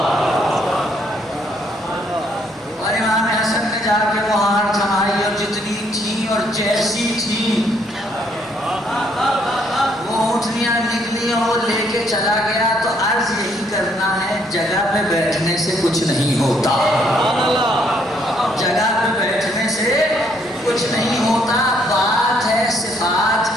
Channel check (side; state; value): both; normal; correlation 0.69